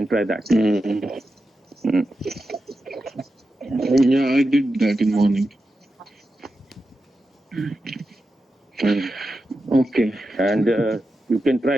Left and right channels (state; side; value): normal; both; correlation 0.90